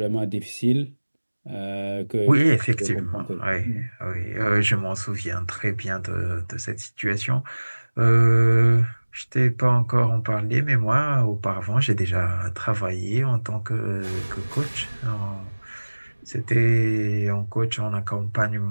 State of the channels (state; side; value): inverted; both; correlation -1.00